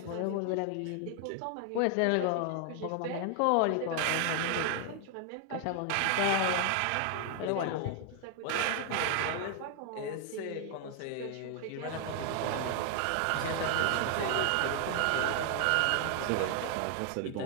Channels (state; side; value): different; both; correlation 0.00